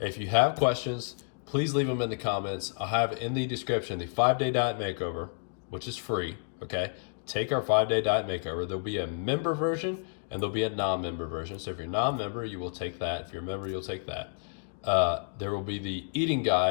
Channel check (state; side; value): silent; right; digital silence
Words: you have questions, please leave them in the comments. I'll have in the description the 5-day diet makeover, which is free, okay? Take our 5-day diet makeover. There'll be a member version and there'll be a non-member version. So if you're non-member, you will take that. If you're a member, you'll take that. There will be the eating